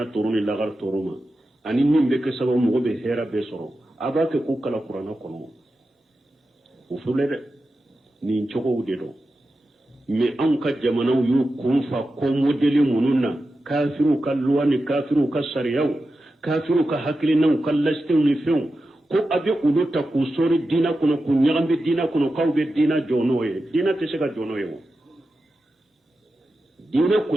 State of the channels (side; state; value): both; normal; correlation 0.91